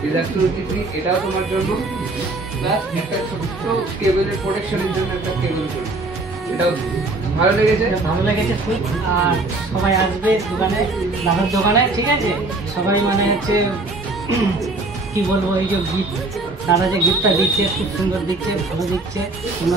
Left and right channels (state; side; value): quieter; left; 3.1 dB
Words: is absolutely free, এটাও তোমার জন্য। প্লাস একটা ছোট্ট কেবলের প্রোটেকশনের জন্য একটা কেবল ফ্রি, এটাও ভালো লেগেছে। ভালো লেগেছে খুব। আর সবাই আসবে দোকানে, দাদার দোকানে, ঠিক আছে? সবাই মানে হচ্ছে কি বলবো, এই যে গিফট, দাদা যে গিফটটা দিচ্ছে খুব সুন্দর দিচ্ছে, ভালো দিচ্ছে।